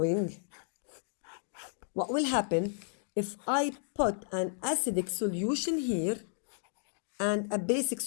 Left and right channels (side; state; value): right; silent; digital silence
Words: What will happen if I put an acidic solution here and a basic